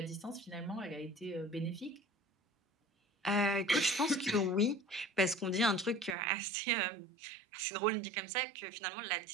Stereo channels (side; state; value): left; drops out; at 6.2 s